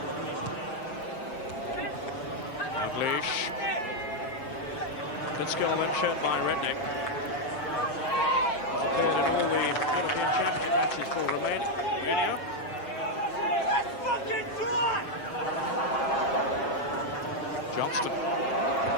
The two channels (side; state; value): right; late; 7.5 ms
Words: Dalglish. Good skill then shown by Redknapp. Appeared in all the European Championship matches for Romania. Johnston.